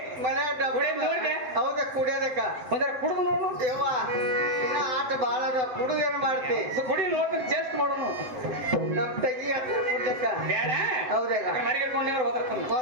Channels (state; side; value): late; left; 7.7 ms